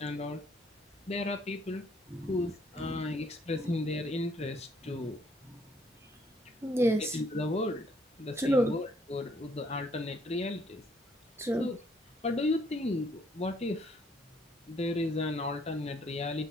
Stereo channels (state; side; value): normal; both; correlation 0.67